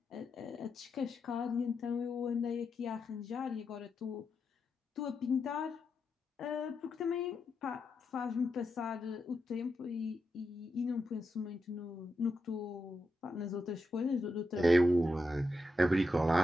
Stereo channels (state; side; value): normal; both; correlation 0.86